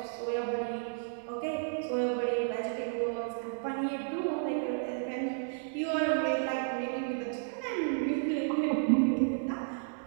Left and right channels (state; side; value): silent; left; digital silence